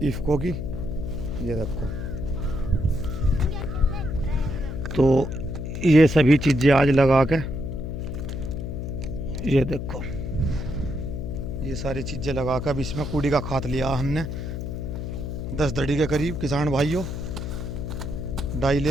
इफ्को की, ये देखो। तो ये सभी चीज़ें आज लगा के, ये देखो, ये सारी चीज़ें लगा कर अब इसमें कूड़ी का खाद लिया हमने 10 दड़ी के करीब। किसान भाइयों, डाई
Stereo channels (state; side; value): noise; left; hum, 5 dB below the sound